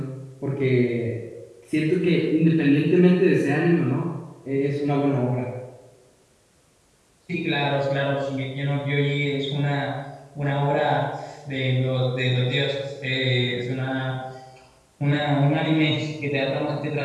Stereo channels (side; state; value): both; identical; correlation 1.00